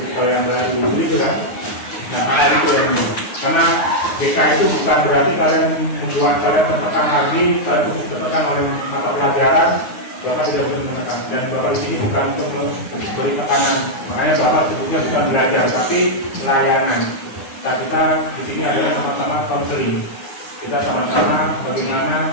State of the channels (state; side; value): late; right; 9.6 ms